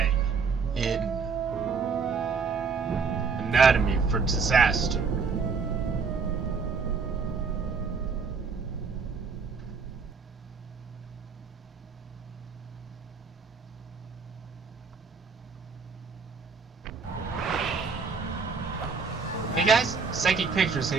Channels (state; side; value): quieter; left; 5.2 dB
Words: in Anatomy for Disaster. Hey guys, Psychic Pictures